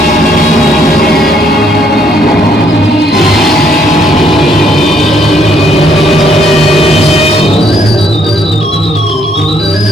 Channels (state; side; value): normal; both; correlation 0.68